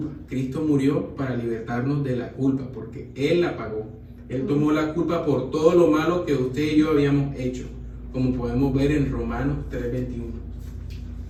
Cristo murió para libertarnos de la culpa, porque Él la pagó. Él tomó la culpa por todo lo malo que usted y yo habíamos hecho, como podemos ver en Romanos 3:21.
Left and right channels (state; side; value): identical; both; correlation 1.00